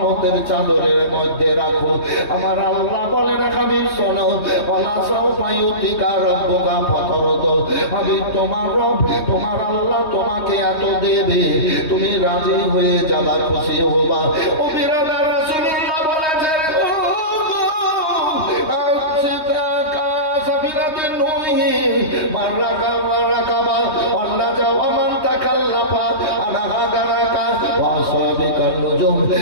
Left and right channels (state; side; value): late; right; 3.2 ms